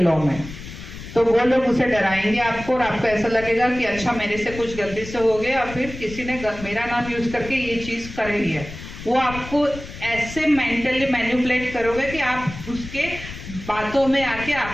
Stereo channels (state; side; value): noise; left; rumble, 12 dB below the sound